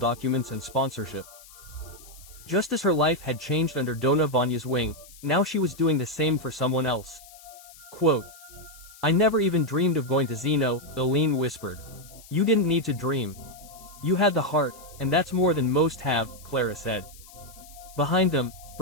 and sponsorship. Just as her life had changed under Dona Vanya's wing, now she was doing the same for someone else. Quote, "I never even dreamed of going to Zeno," Aline whispered. "You didn't need to dream. You had the heart, and that's more than most have," Clara said. Behind them,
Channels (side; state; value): left; noise; hiss, 21 dB below the sound